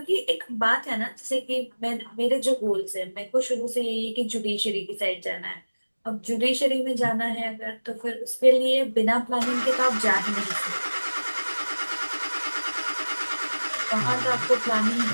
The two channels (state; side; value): inverted; both; correlation -1.00